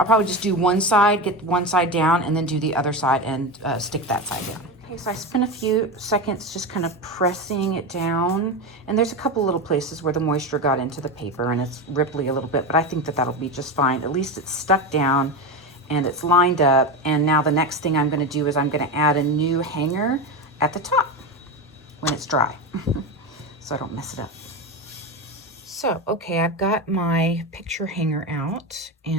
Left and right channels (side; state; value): both; normal; correlation 0.19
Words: probably just do one side, get one side down, and then do the other side and stick that side down. Okay, so I spent a few seconds just kind of pressing it down, and there's a couple little places where the moisture got into the paper and it's ripply a little bit, but I think that that'll be just fine. At least it's stuck down, and it's lined up. And now the next thing I'm going to do is I'm going to add a new hanger at the top when it's dry so I don't mess it up. So, okay, I've got my picture hanger out,